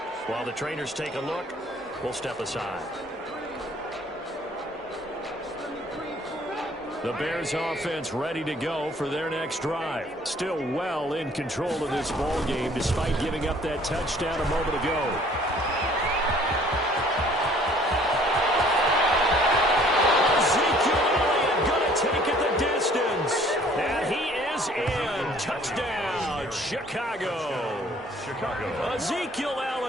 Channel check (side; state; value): both; normal; correlation 0.56